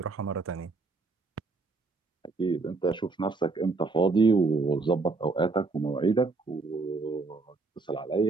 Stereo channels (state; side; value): quieter; left; 3.9 dB